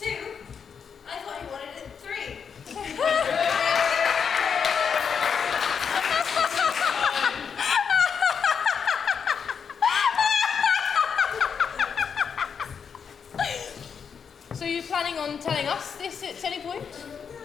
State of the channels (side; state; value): right; quieter; 6.6 dB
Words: I thought he wanted it 3. So you're planning on telling us this at any point?